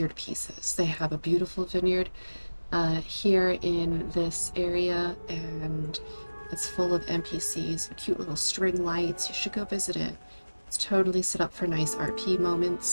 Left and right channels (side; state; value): both; inverted; correlation -1.00